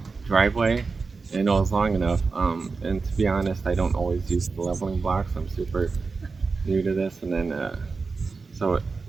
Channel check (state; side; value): quieter; left; 4.4 dB